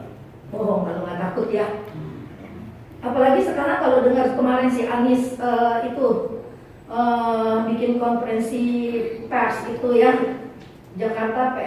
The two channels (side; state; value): both; identical; correlation 1.00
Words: Bohong kalau nggak takut ya. Apalagi sekarang kalau dengar kemarin si Anies bikin konferensi pers itu ya, Jakarta